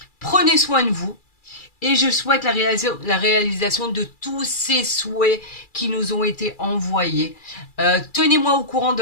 Prenez soin de vous. Et je souhaite la réalisation de tous ces souhaits qui nous ont été envoyés. Tenez-moi au courant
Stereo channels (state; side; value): late; right; 2.4 ms